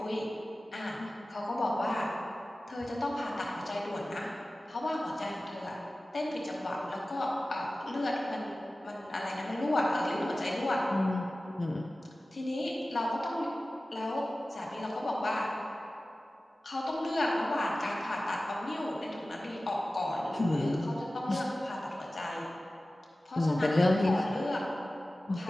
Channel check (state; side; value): normal; both; correlation 0.96